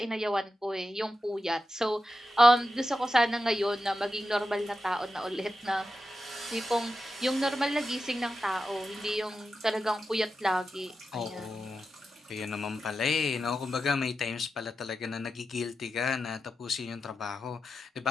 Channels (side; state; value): both; normal; correlation 0.90